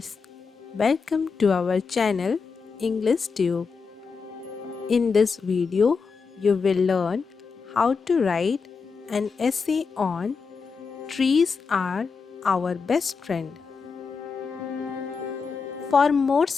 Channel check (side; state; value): right; quieter; 5.2 dB